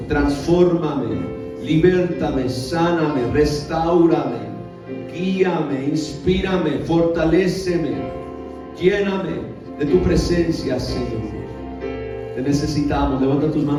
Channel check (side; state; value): both; identical; correlation 1.00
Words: transfórmame, libértame, sáname, restáurame, guíame, inspírame, fortaléceme, lléname de tu presencia, Señor. Te necesitamos. Levanta tus